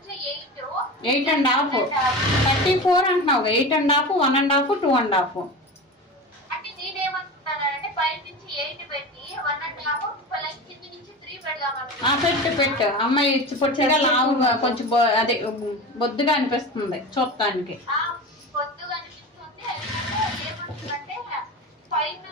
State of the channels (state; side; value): normal; both; correlation 0.28